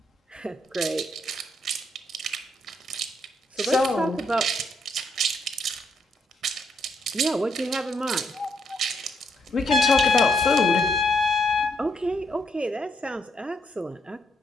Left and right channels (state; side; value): normal; both; correlation 0.76